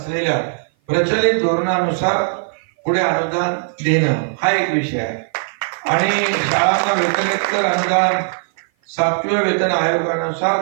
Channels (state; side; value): silent; left; 55 dB below the other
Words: प्रचलित धोरणानुसार पुढे अनुदान देणं हा एक विषय आहे आणि शाळांना वेतनोत्तर अनुदान 7व्या वेतन